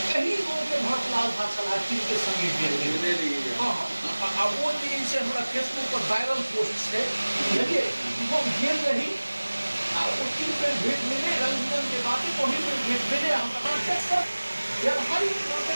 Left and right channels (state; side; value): inverted; both; correlation -1.00